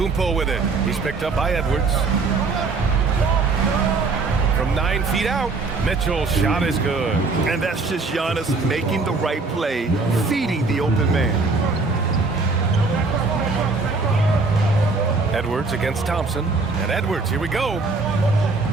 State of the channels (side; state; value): left; quieter; 3.9 dB